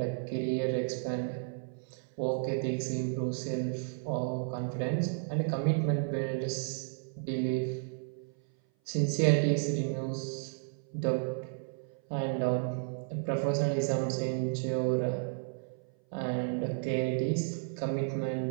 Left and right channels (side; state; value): left; silent; 56 dB below the other